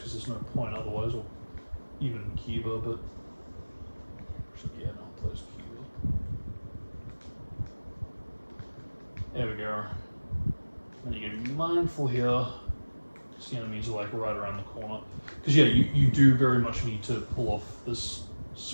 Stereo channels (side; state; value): both; inverted; correlation -1.00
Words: there's no point otherwise, or even Kiba, but... Actually, yeah, no, it plays Kiba. There we go. And you gotta be mindful here, because the enemies are like right around the corner. Because yeah, you do very much need to pull off this